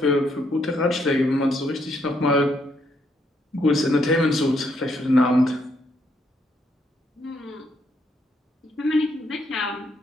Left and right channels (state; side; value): normal; both; correlation 0.74